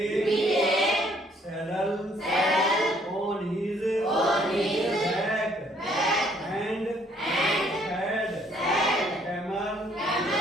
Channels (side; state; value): both; normal; correlation 0.64